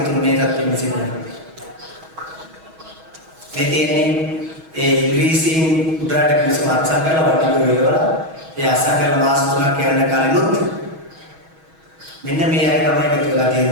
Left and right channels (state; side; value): late; left; 6.3 ms